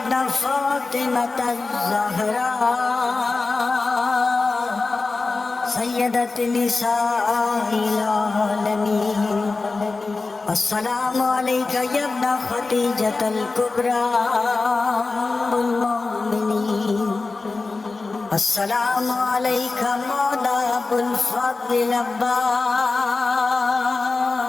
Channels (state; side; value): quieter; right; 3.8 dB